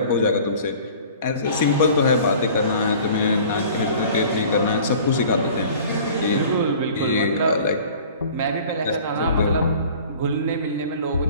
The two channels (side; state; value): both; inverted; correlation -0.46